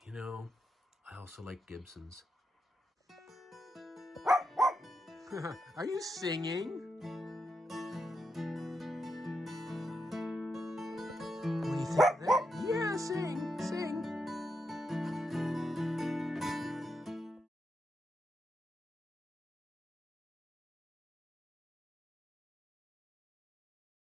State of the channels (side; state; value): both; normal; correlation 0.85